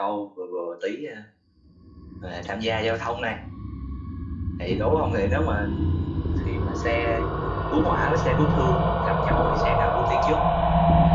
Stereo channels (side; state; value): both; identical; correlation 1.00